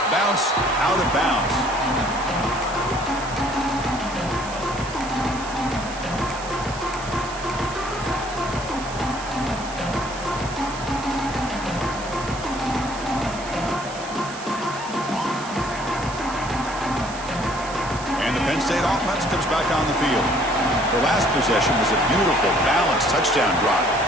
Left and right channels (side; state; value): right; noise; hiss, 14 dB below the sound